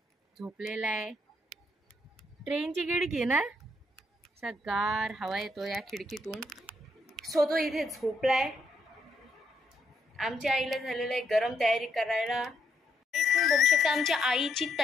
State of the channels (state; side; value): normal; both; correlation 0.75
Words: झोपलेला आहे। ट्रेनची खिडकी आहे ना, असा गार हवा येतो या खिडकीतून, सो तो इथे झोपलाय। आमच्या आईला झालेलं आहे गरम तयारी करायला। तुम्ही बघू शकता आमच्या आईची